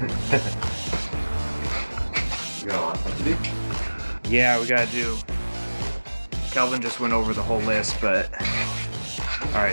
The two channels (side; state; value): both; inverted; correlation -1.00